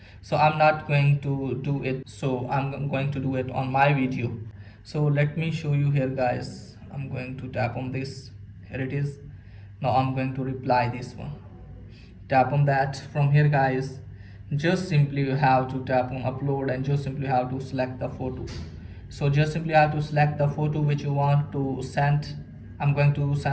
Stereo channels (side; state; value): both; identical; correlation 1.00